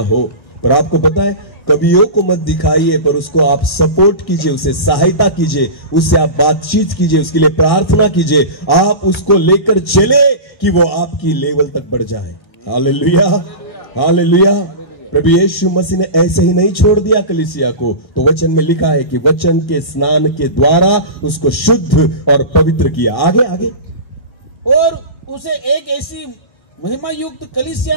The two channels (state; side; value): late; right; 1.8 ms